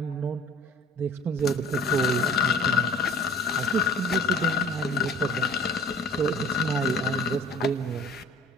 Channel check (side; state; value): both; normal; correlation 0.48